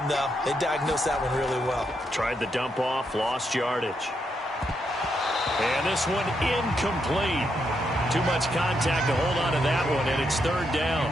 though. They diagnosed that one really well. Tried the dump off, lost yardage. And this one incomplete. Too much contact to hold on to that one, and it's 3rd down.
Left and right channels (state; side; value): normal; both; correlation 0.80